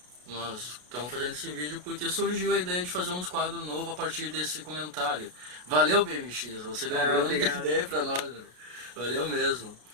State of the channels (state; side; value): late; left; 33 ms